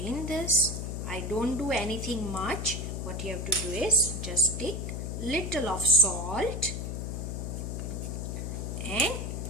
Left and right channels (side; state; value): left; noise; hum, 4 dB below the sound